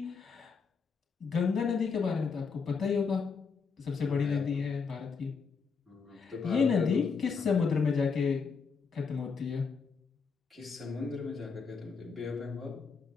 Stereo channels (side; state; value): right; quieter; 5.4 dB